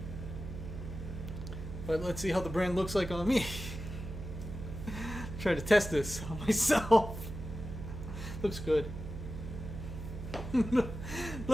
But let's see how the brand looks like on me. Try to test this on myself. Looks good.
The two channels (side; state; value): right; noise; hum, 8 dB below the sound